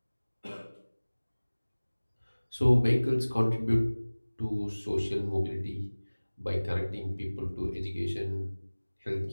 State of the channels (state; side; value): inverted; both; correlation -1.00